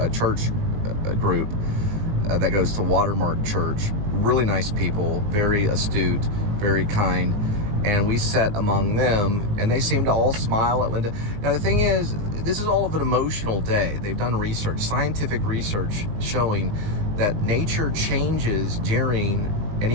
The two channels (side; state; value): left; late; 19 ms